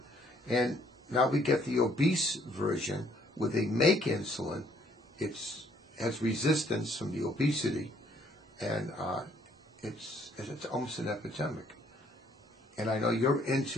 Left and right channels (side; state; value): both; normal; correlation 0.64